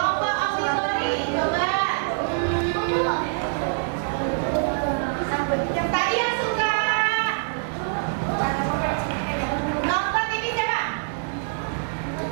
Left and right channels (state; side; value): silent; left; digital silence